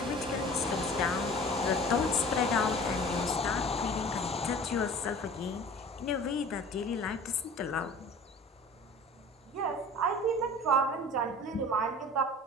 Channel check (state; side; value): normal; both; correlation 0.42